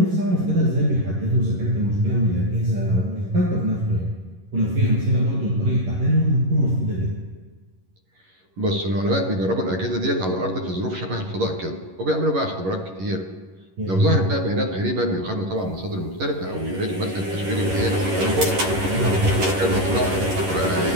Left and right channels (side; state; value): left; late; 11 ms